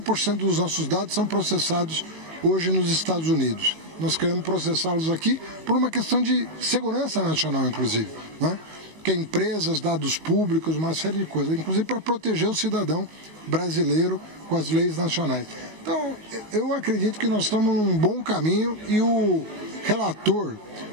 dos nossos dados são processados hoje nos Estados Unidos. Nós queremos processá-los aqui por uma questão de segurança nacional, inclusive, né? Que é empresas, dados públicos, uma série de coisas, inclusive para proteger o cidadão brasileiro com as leis nacionais. Então, eu acredito que nós estamos num bom caminho e o relator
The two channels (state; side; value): late; left; 19 ms